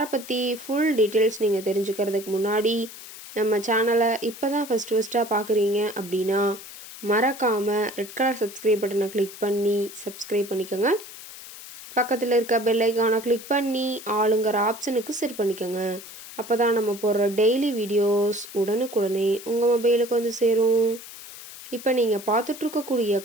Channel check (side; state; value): left; noise; hiss, 15 dB below the sound